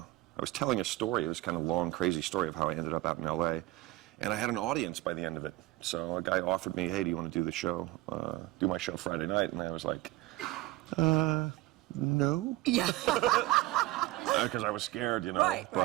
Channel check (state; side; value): quieter; left; 18.1 dB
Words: was telling a story. It was kind of a long, crazy story of how I ended up out in L.A., and I had an audience by the end of it. So a guy offered me, "Hey, do you want to do the show, do my show Friday night?" And I was like, no. Yeah. Because I was scared, Right,